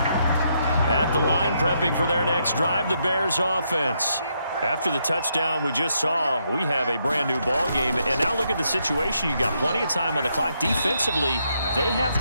At the line, prepping for their next drive, the Bears offense. After the touchdown we just saw, we have a brand new ball game. And now look at the situation. You got plenty of time on the clock. Defensively, they have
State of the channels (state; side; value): inverted; both; correlation -0.77